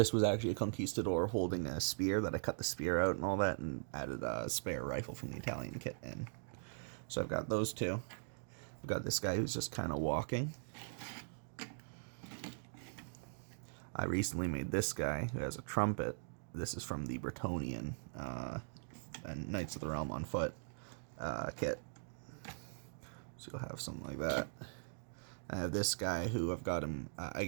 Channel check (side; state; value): left; silent; digital silence